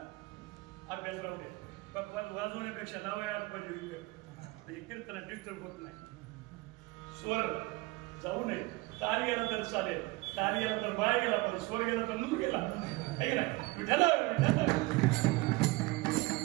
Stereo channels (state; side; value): quieter; left; 22.3 dB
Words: अभ्यास राहू दे. वाजवण्यापेक्षा लावायला पाहिजे म्हणजे कीर्तनात डिस्टर्ब होत नाही. स्वर जाऊ नये. ताल गेला तर चालेल, ताल गेला तर बाय गेला, पण स्वर गेला तर नूर गेला. विठाला